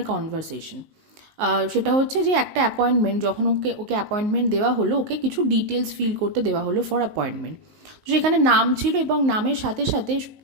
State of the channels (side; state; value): left; late; 19 ms